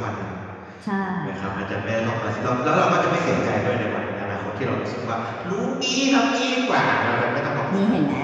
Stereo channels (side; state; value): both; identical; correlation 1.00